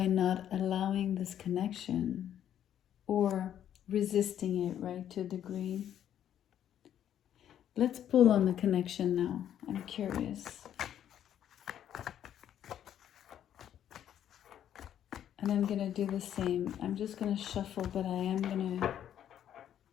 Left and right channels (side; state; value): right; quieter; 10.3 dB